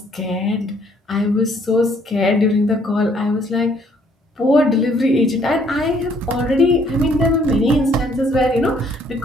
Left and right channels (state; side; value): normal; both; correlation 0.64